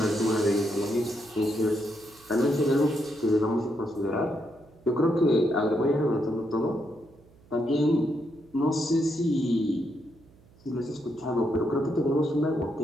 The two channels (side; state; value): right; noise; hum, 27 dB below the sound